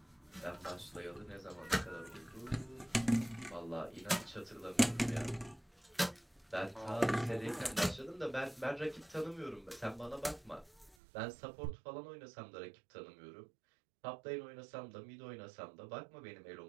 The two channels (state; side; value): drops out; left; at 11.0 s